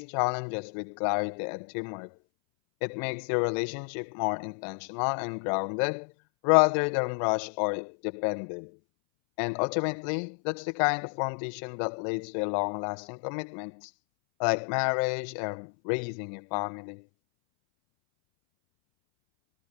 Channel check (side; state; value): right; silent; 58 dB below the other